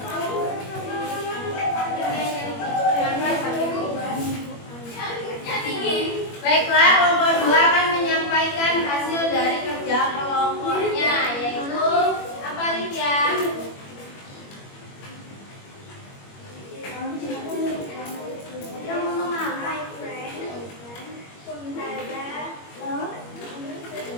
kedua akan menyampaikan hasil dari kerja kelompoknya, yaitu apa Lydia?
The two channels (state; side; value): late; right; 21 ms